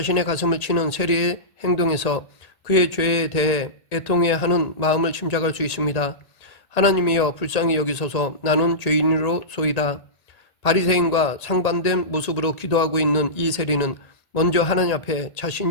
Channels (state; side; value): late; right; 1.8 ms